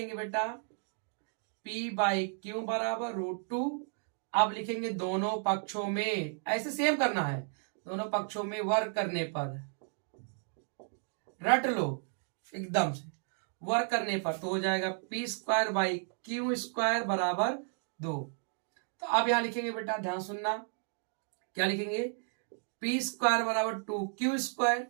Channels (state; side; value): silent; left; 55 dB below the other